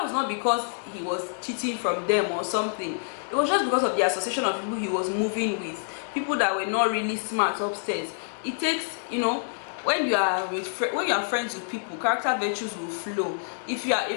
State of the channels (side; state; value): right; silent; digital silence